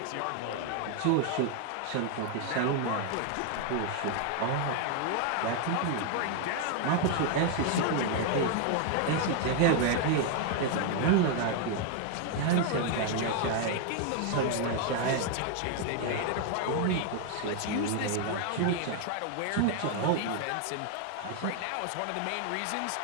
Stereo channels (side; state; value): both; different; correlation 0.00